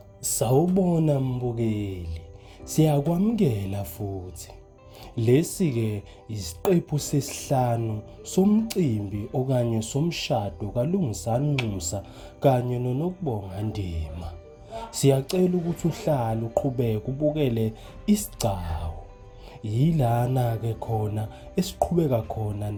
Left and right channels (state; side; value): identical; both; correlation 1.00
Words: Sawubona mbukeli, siyakwamukela futhi. Lesi-ke isiqephu sesihlanu somcimbi okanye somshado kaLungisani Nxusa kanye noNokubonga Ndima. Siyacela ukuthi uhlale uqhubeke ubukele isigcawu. Yilana-ke khona esiqhubeka khona